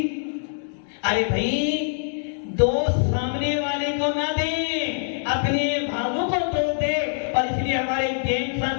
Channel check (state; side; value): silent; right; digital silence